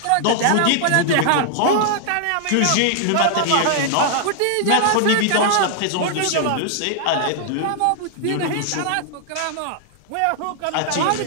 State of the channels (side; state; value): both; different; correlation 0.00